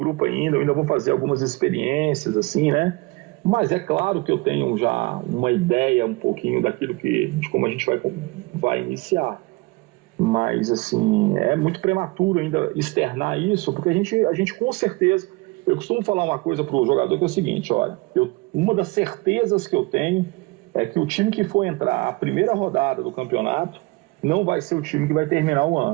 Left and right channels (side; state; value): left; quieter; 24.2 dB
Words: ainda. Eu ainda vou fazer algumas experiências, assim, né? Mas é claro que eu tenho já uma ideia um pouquinho daquilo de como a gente vai iniciar. Mas, assim, é muito prematuro ainda externar isso, porque a gente com certeza... Eu costumo falar uma coisa para o jogador que é o seguinte, olha, uma das certezas que eu tenho é que o time que for entrar a primeira rodada do campeonato não vai ser o time que vai terminar o